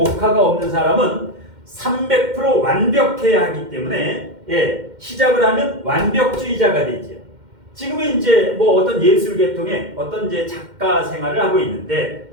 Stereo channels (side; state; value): left; late; 2.1 ms